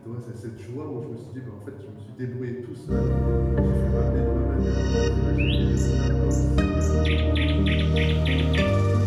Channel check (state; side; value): identical; both; correlation 1.00